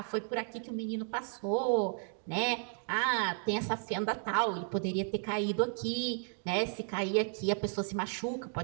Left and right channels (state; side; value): silent; left; 55 dB below the other